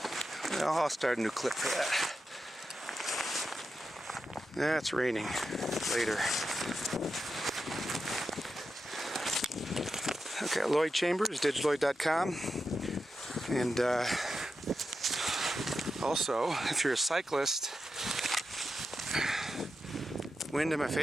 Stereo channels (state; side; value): normal; both; correlation 0.89